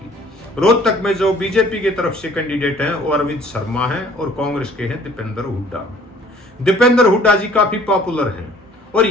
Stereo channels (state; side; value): normal; both; correlation 0.55